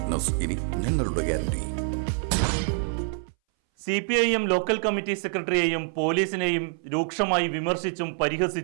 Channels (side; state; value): left; silent; 61 dB below the other